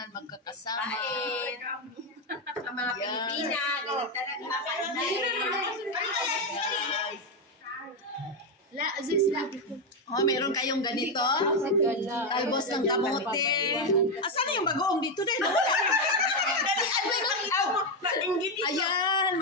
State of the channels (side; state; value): both; normal; correlation 0.07